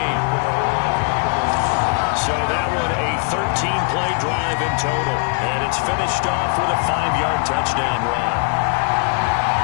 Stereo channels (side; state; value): right; quieter; 36.6 dB